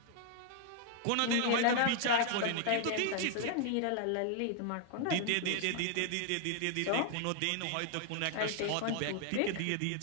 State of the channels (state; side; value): different; both; correlation 0.00